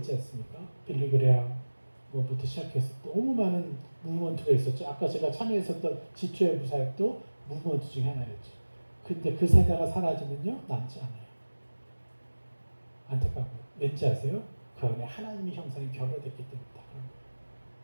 않습니까? 빌리그레아 뭐부터 시작해서 너무 많은 무브먼트가 있었죠. 아까 제가 참여했었던 지초의 부사역도 무브먼트 중에 하나였죠. 근데 그 세대가 사라지면요 남지 않아요. 안타까워요. 왠지 아세요? 그 안에 하나님의 형상이 결여됐기 때문이다.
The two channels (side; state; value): both; inverted; correlation -1.00